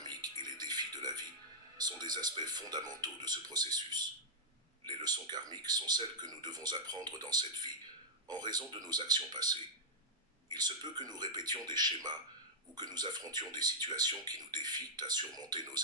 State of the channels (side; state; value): both; normal; correlation -0.08